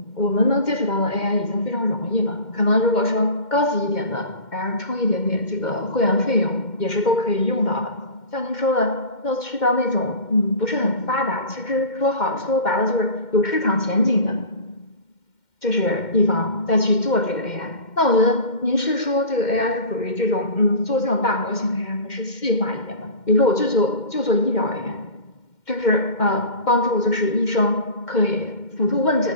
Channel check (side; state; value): right; late; 2.1 ms